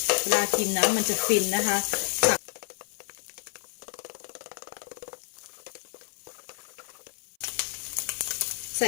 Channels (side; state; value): right; silent; 58 dB below the other